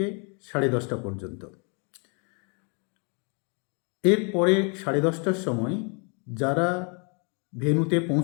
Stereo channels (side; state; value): right; quieter; 36.3 dB